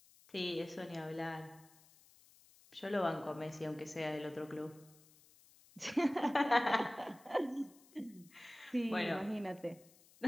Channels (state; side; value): noise; left; hiss, 26 dB below the sound